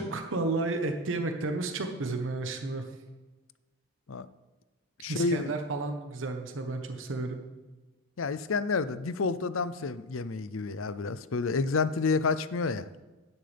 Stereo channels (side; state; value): both; normal; correlation 0.16